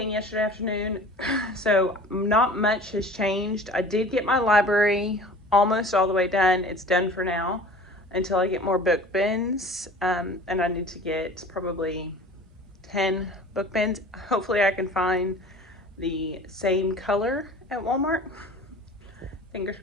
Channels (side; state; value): both; normal; correlation 0.43